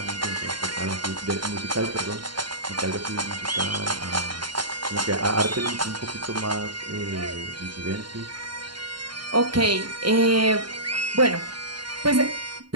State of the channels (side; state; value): left; late; 0.72 ms